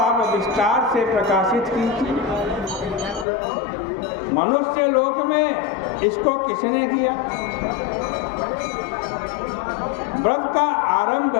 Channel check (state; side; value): drops out; right; at 3.2 s